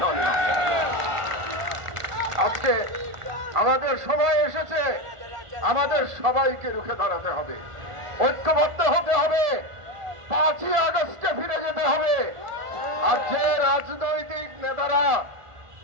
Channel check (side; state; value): left; late; 1.4 ms